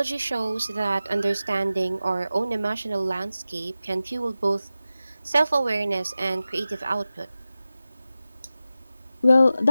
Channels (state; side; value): inverted; both; correlation -0.94